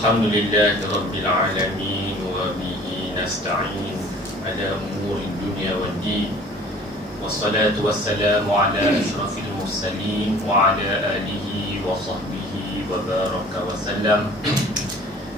rabbil alamin wa bihi nasta'in ala umuri dunya waddin. Wassalatu wassalamu ala asyrafil mursalin wa ala alihi wa sahbihi wa baraka wa sallam.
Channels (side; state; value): both; normal; correlation 0.48